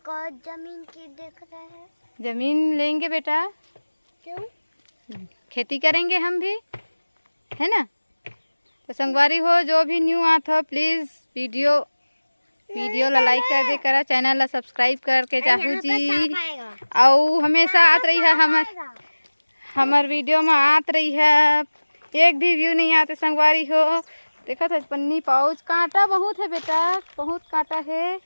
और जमीन की देख रहे हैं। जमीन लेंगे बेटा, क्यों? खेती करेंगे हम भी, है ना। तो संगवारी हो जो भी न्यू आत हो प्लीज वीडियो ला लाइक कर दे करा, चैनल ला सब्सक्राइब करके जाहू जी। और हमेशा आत रही है हमार वीडियो में आत रही है। एक भी व्यू नहीं आते संगवारी हो। देखो था पन्नी पाउच, कांटा बहुत है बेटा, बहुत कांटा है।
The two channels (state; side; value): inverted; both; correlation -1.00